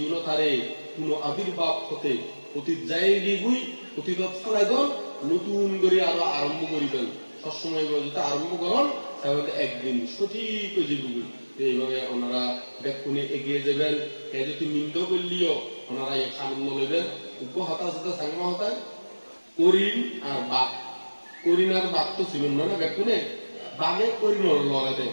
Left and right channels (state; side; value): inverted; both; correlation -1.00